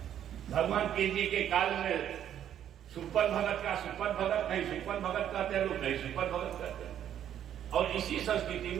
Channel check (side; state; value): left; quieter; 10.3 dB